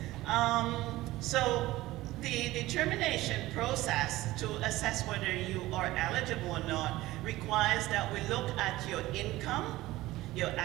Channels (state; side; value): quieter; left; 17.5 dB